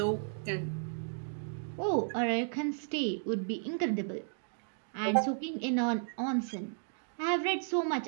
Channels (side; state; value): left; silent; digital silence